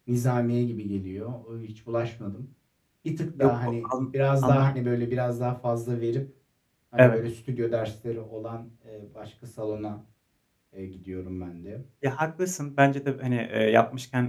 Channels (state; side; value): identical; both; correlation 1.00